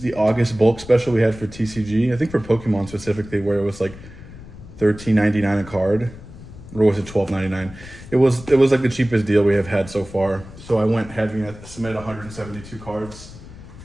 August bulk special we had for TCG. I think for Pokemon specifically, where it was like $13.99 a card, or was it $12.99? It was like the cheapest deal we have had so far. So I went heavy and I submitted 172 cards.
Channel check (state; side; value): noise; left; rumble, 16 dB below the sound